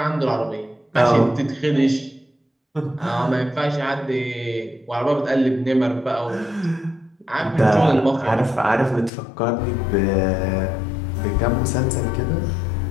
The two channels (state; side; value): drops out; right; at 9.1 s